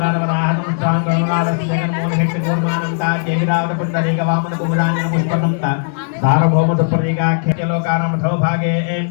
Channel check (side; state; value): right; silent; digital silence